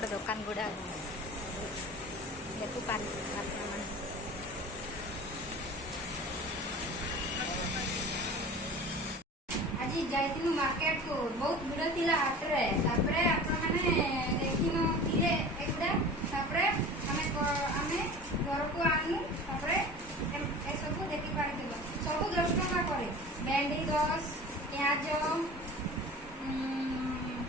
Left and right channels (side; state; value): both; normal; correlation 0.38